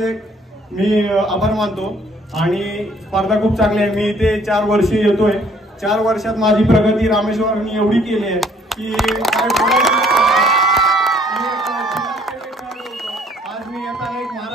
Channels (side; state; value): both; normal; correlation 0.61